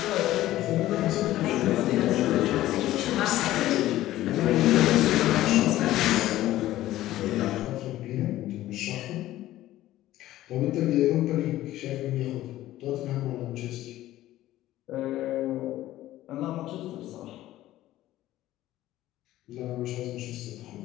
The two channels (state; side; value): quieter; right; 14.9 dB